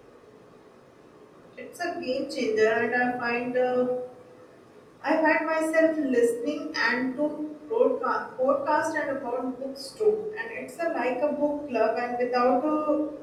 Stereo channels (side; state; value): both; identical; correlation 1.00